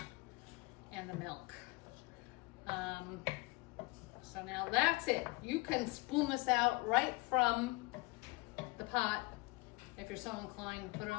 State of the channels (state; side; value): quieter; right; 24.6 dB